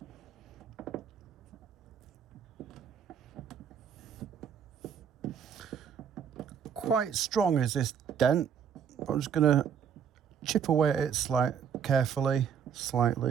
Quite strong is this dent. I'm just gonna chip away at it carefully.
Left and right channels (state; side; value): quieter; left; 7.7 dB